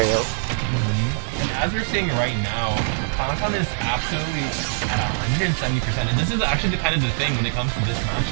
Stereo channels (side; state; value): left; silent; 64 dB below the other